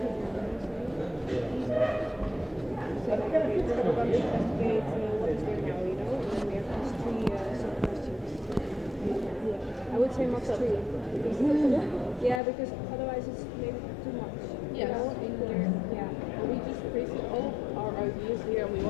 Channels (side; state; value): right; drops out; at 12.4 s